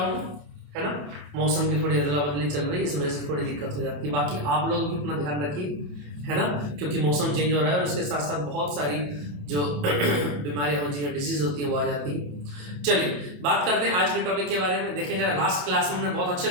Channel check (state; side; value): late; left; 28 ms